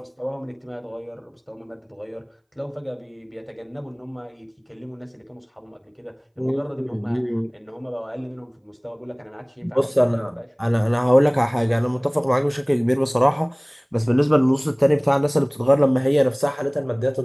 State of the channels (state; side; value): identical; both; correlation 1.00